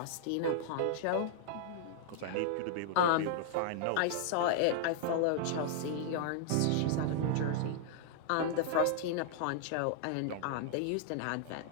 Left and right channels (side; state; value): both; different; correlation -0.01